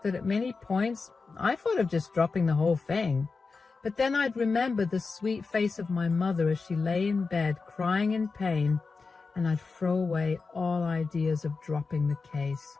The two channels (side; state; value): right; quieter; 4.4 dB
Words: that at many points I thought of just dropping the whole thing. But then I'd remember the sweet face of my mother as she lay in bed crying in pain, and I'd throw away all ideas of dropping the case.